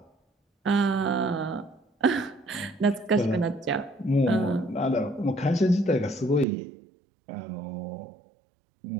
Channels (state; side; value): drops out; left; at 6.5 s